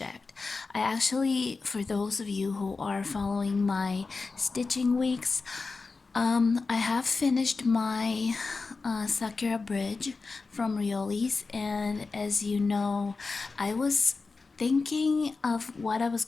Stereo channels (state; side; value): quieter; right; 4.1 dB